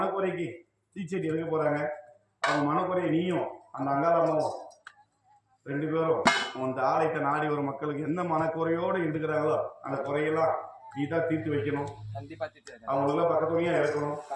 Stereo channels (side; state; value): both; identical; correlation 1.00